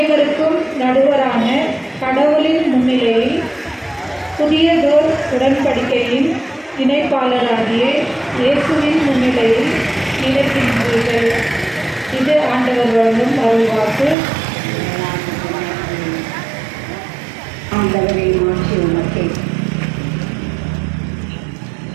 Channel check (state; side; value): drops out; left; at 14.2 s